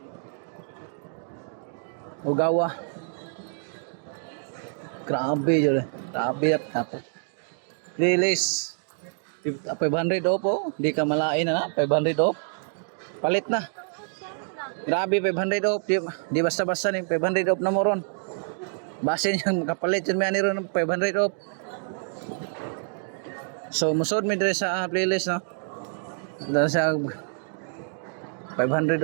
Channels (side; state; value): left; silent; digital silence